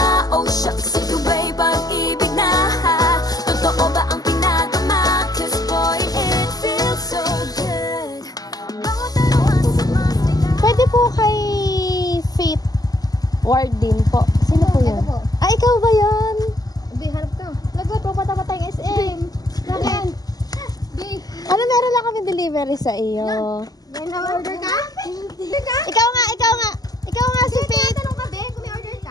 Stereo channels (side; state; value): right; late; 0.18 ms